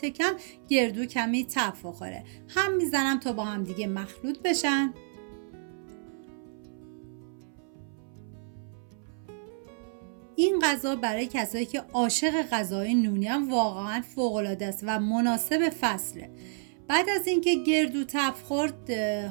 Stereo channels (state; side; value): silent; left; 58 dB below the other